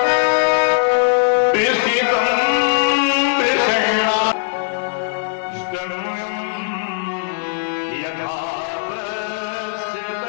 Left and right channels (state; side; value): silent; right; 63 dB below the other